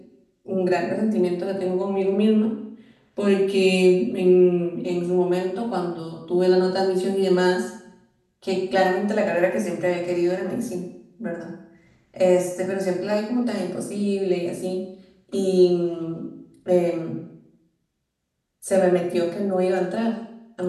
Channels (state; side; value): identical; both; correlation 1.00